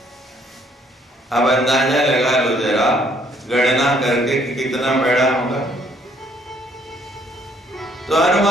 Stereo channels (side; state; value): both; normal; correlation 0.65